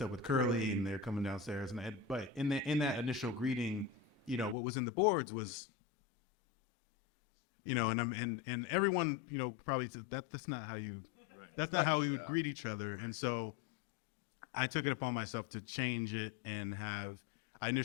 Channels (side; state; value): right; drops out; at 4.5 s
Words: up with Curly, and they're coming downstairs, but in that initial greeting, you know, what was in the boards was, you know, and everyone, you know, probably said that's not how we would greet each other. And so I took it upon myself to change it and I